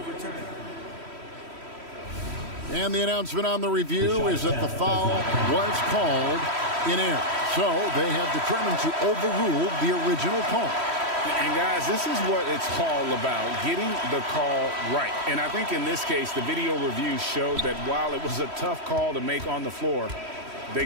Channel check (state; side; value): late; left; 3.1 ms